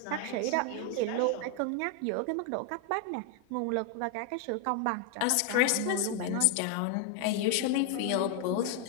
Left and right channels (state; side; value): different; both; correlation 0.01